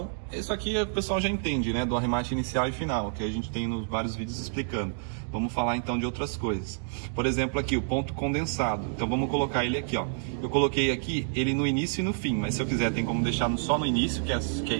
isso aqui o pessoal já entende, né? Do arremate inicial e final, que a gente tem nos vários vídeos explicando. Vamos falar então de outras coisas. Por exemplo, aqui o ponto condensado. Então vamos colocar ele aqui, ó. Eu coloquei aqui ele no início e no fim, mas se eu quiser tem como deixar só no início, que é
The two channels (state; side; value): silent; left; digital silence